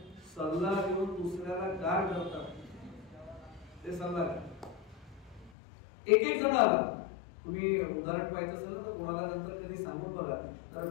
सल्ला देऊन दुसऱ्याला गार करतात ते सल्लागार. एक जण आला, तुम्ही उदाहरण पाहिजे असेल तर कोणाला नंतर कधी सांगून बघा, तर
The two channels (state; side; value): drops out; right; at 5.5 s